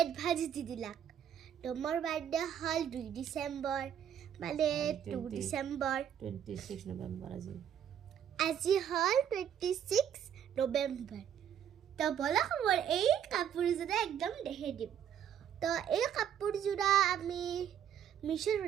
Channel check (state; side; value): quieter; left; 9.2 dB